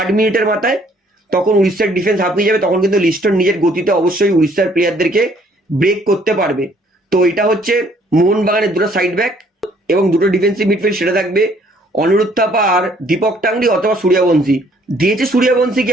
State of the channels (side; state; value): both; normal; correlation 0.62